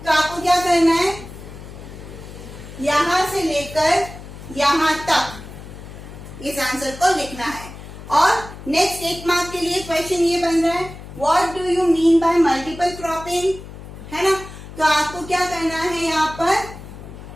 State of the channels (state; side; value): noise; left; hum, 14 dB below the sound